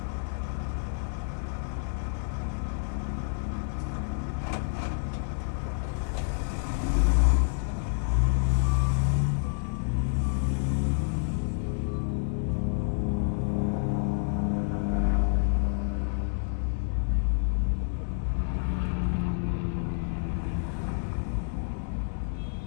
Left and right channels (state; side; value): silent; right; digital silence